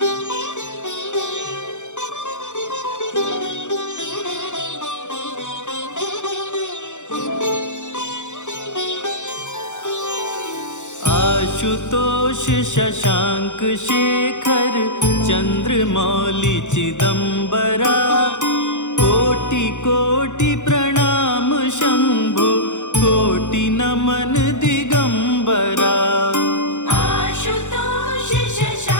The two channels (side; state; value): right; late; 0.85 ms